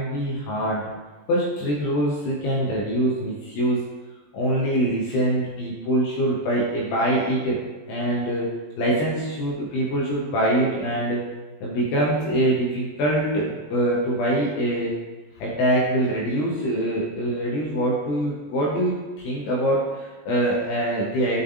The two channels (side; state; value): right; late; 20 ms